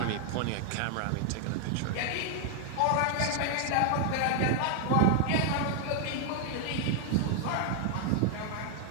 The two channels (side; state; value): both; different; correlation 0.00